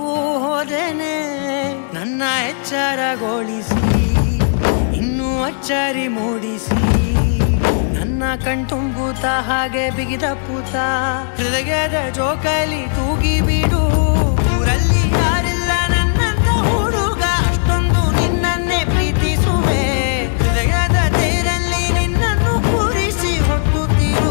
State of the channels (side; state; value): right; silent; 65 dB below the other